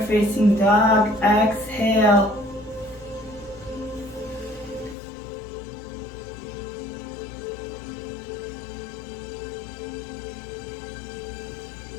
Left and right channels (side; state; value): right; drops out; at 5.0 s